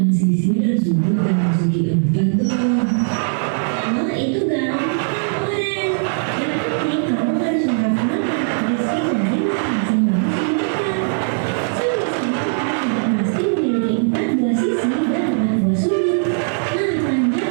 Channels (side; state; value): left; silent; 62 dB below the other